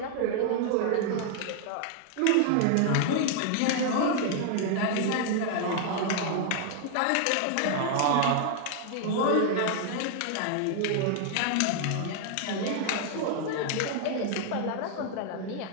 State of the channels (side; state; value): both; different; correlation 0.00